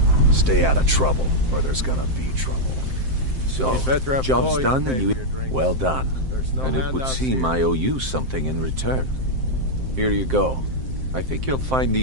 Stay out of trouble, or there's gonna be trouble. So, job's done and you... Well done. And it would seem I owe you something in return. Here you go. I think you'll find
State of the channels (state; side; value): late; left; 7.7 ms